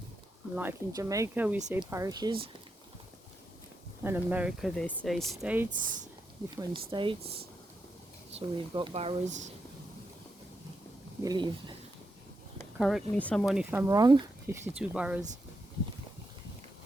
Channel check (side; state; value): both; normal; correlation 0.85